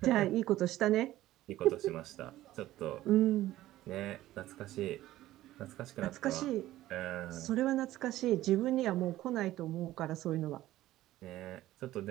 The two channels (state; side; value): quieter; left; 15.1 dB